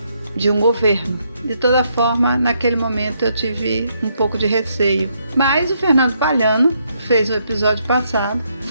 de um governo. De toda forma, naquele momento eu tive um pouco de receio. Mas o Fernando Palhano fez um episódio passado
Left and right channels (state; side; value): inverted; both; correlation -0.75